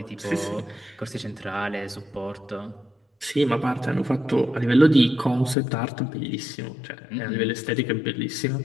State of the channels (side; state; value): right; drops out; at 5.6 s